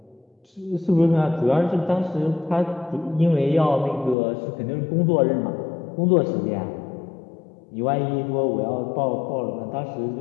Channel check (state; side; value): drops out; right; at 4.2 s